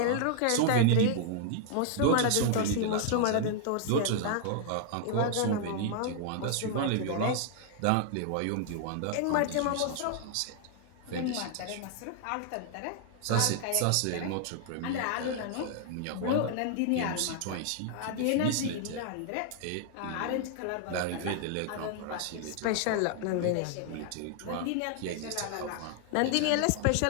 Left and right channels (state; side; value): different; both; correlation 0.00